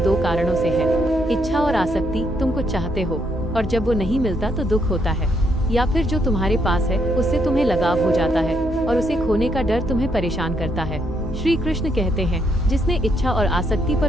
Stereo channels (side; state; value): both; normal; correlation 0.75